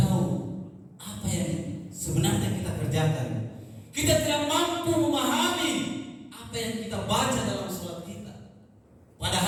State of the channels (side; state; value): both; identical; correlation 1.00